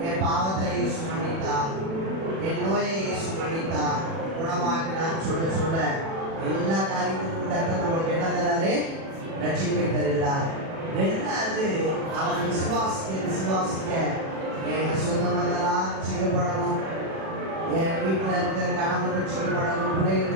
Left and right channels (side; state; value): left; late; 36 ms